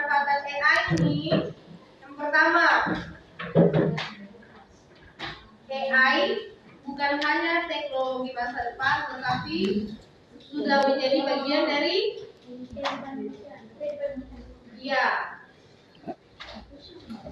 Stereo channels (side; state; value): both; identical; correlation 1.00